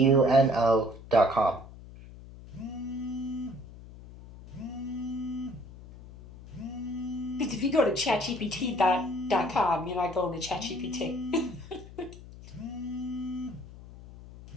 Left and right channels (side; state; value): left; noise; hum, 17 dB below the sound